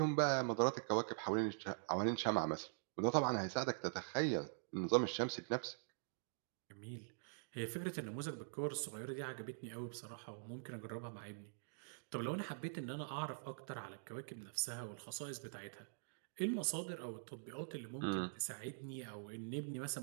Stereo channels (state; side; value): silent; left; digital silence